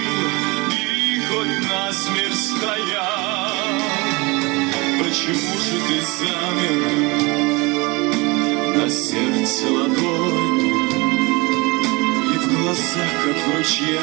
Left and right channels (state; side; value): quieter; left; 25.6 dB